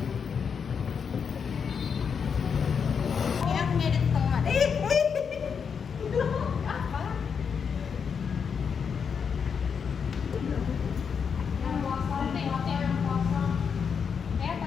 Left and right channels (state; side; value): quieter; right; 6.5 dB